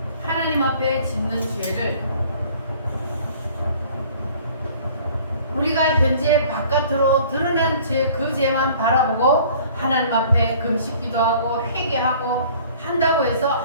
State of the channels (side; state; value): both; inverted; correlation -0.52